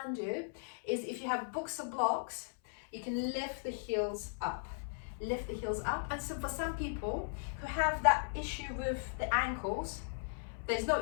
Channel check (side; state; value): right; silent; 53 dB below the other